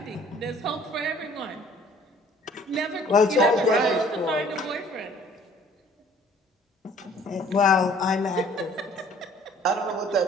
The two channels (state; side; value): normal; both; correlation 0.55